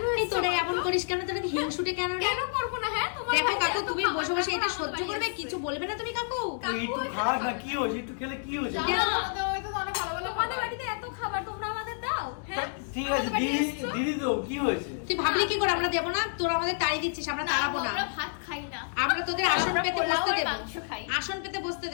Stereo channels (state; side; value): silent; right; digital silence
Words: এই এসেছো? তোরা এমন করিস কেন? তোরা কি হিংসুটে কেন রে? কেন করবো না? হ্যাঁ তোমার দেখো বাড়িতে কাকু, এত তুমি খাবার বসে বসে এটা খাওয়া সহ্য আমাদের করবে? বাড়িতে কিছু বলবে না তুমি কাকু? একটু খাস না, কি হয়েছে? একটু খেলে কি হয়েছে? জানো আমাদের বাড়িতে তো অনেক ভালো ভালো তোমাদের খাবার। বাড়িতে এত খাবার তোমরা আমাদের দাও? হ্যাঁ ঠিক আছে, আমাদের বাড়িতে দিদি এসেছো? দিদি তো কি হয়েছে? তুই ভাবলি কি করে আমরা দেবো না? তোরা আমাদের তাড়ি দিচ্ছিস, আমরা তাড়াবো না। আমরা ভাত খাই না। আমরা তোদের আসন আমরা পেতে পোলাও বসতে আর দেবো, মাংস খাই। আসন পেতে বসতে